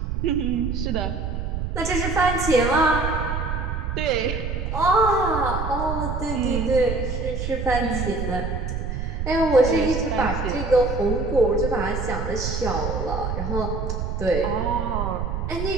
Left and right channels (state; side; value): noise; right; rumble, 3 dB below the sound